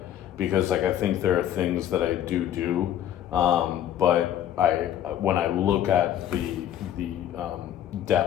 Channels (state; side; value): quieter; right; 11.0 dB